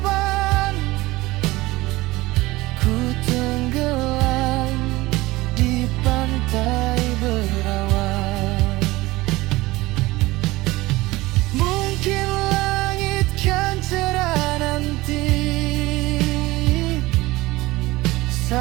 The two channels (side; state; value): left; quieter; 19.8 dB